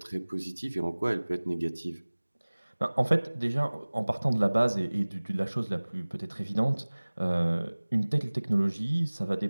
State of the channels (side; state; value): both; inverted; correlation -1.00